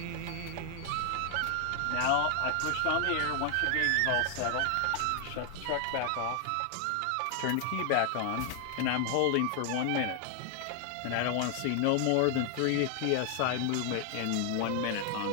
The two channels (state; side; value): different; both; correlation 0.00